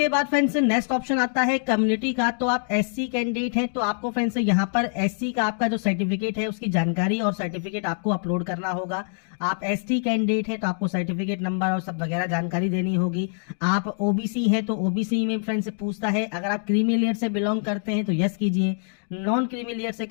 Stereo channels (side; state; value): right; silent; digital silence